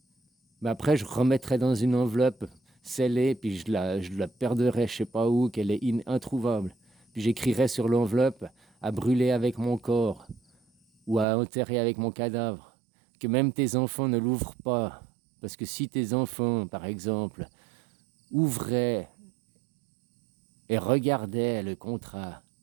Mais après, je remettrais dans une enveloppe scellée, puis je la perdrais je sais pas où, qu'elle est introuvable. Puis j'écrirais sur l'enveloppe à brûler avec mon corps ou à enterrer avec mon cadavre. Que même tes enfants ne l'ouvrent pas. Parce que si tes enfants, par exemple, ouvraient et regardaient le contrat,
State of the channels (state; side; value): drops out; left; at 11.2 s